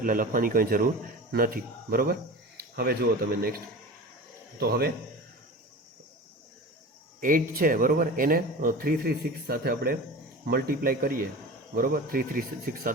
લખવાની કંઈ જરૂર નથી, બરાબર. હવે જુઓ તમે નેક્સ્ટ. તો હવે 8 છે, બરાબર, એને 336 સાથે આપણે મલ્ટીપ્લાય કરીએ, બરાબર. 336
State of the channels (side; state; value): both; normal; correlation 0.33